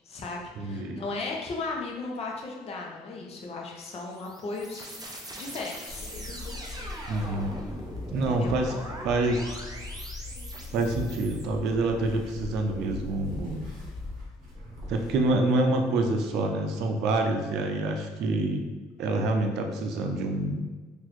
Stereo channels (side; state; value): both; normal; correlation 0.58